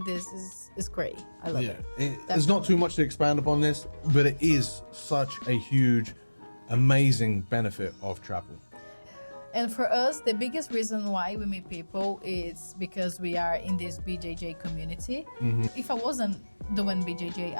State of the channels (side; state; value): both; inverted; correlation -1.00